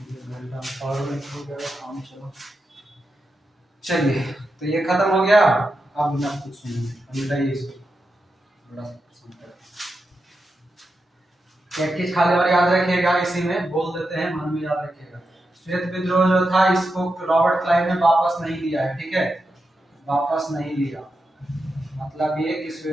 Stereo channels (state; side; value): normal; both; correlation 0.88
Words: घंटा पावर बैंक हो गया काम। चलो चलिए, तो ये खत्म हो गया। अब बिना कुछ सुनिए, बताइए इसको बड़ा पसंद है। एक चीज खाली और याद रखिएगा, इसी में बोल देते हैं, मन में याद रखिएगा। श्वेत विद्रोह जो था, इसको रॉबर्ट क्लाइव ने वापस नहीं लिया है, ठीक है, वापस नहीं लिया। मतलब ये कि